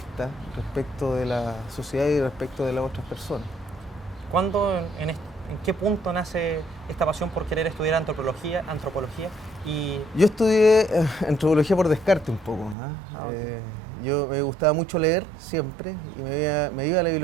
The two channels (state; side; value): drops out; left; at 12.8 s